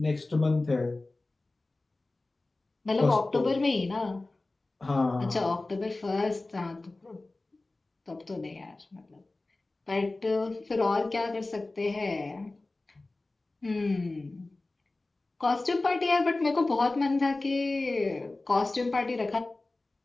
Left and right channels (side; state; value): right; quieter; 3.1 dB